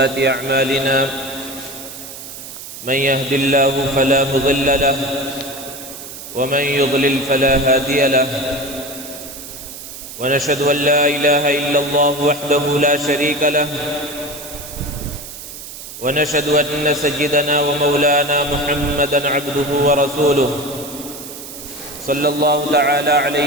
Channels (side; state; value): right; noise; hiss, 12 dB below the sound